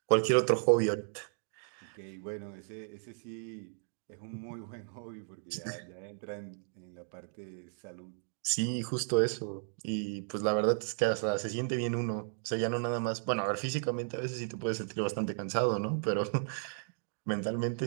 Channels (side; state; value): left; silent; digital silence